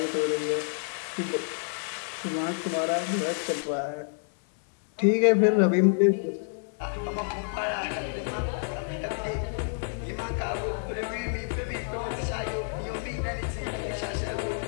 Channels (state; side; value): silent; right; digital silence